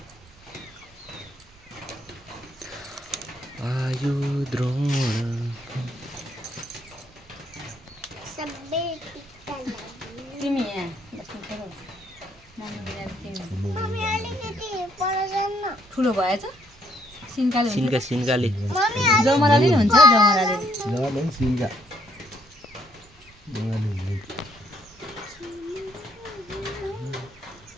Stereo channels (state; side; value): normal; both; correlation 0.69